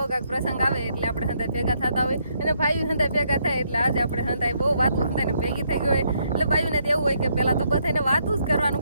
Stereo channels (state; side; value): inverted; both; correlation -0.74